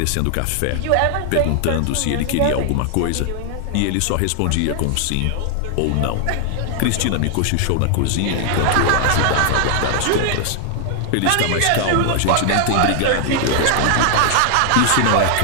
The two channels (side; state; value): both; different; correlation 0.00